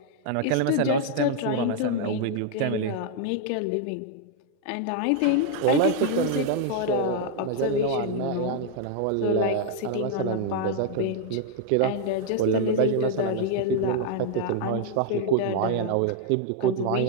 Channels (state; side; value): different; both; correlation 0.00